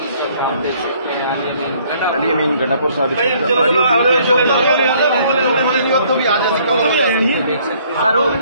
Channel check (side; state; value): both; inverted; correlation -0.61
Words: अली अमीन गन्नापुर साहब तो भी आ जा सकते सर वो